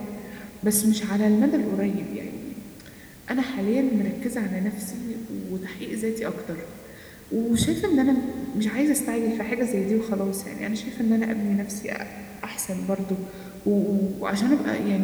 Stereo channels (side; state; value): both; identical; correlation 1.00